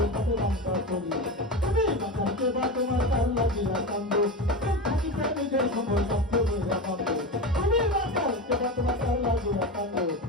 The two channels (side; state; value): both; normal; correlation 0.22